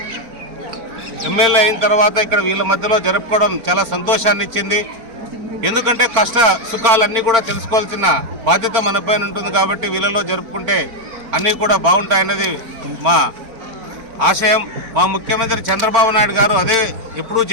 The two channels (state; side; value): late; left; 4.4 ms